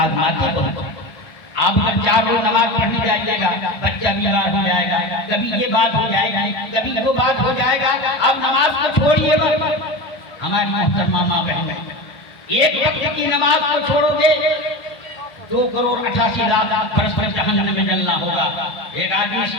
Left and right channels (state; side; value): late; right; 1.5 ms